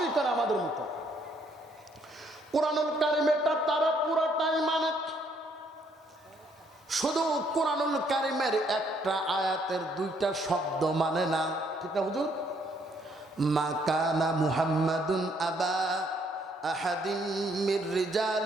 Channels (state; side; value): normal; both; correlation 0.68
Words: করে আমাদের মতো। কোরআনুল কারীমেরটা তারা পুরাটাই মানে। শুধু কোরআনুল কারীমের একটা আয়াতের দুইটা শব্দ মানে না। ঠিক না হুজুর? মা কানা মুহাম্মাদুন আবা আহাদিন মির